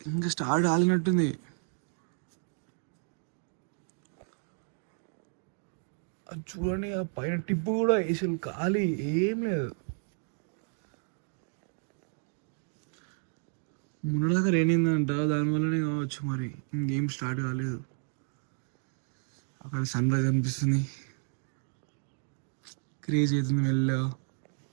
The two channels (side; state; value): left; silent; 57 dB below the other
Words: ఇంకా స్టార్ట్ కాలినట్టుంది. అది చూడండి, ఆ పైన టిప్పు కూడా అసలు ఖాళీ ఏం లేదు. మొన్నదాకా రేనిందంట, దానివల్లనే కావచ్చు మరి ఇంకేం స్టార్ట్ కాలేదు. అక్కడ సన్ రైజ్ అనిపిస్తుంది, క్రేజ్ అవుతుంది మెల్లగా.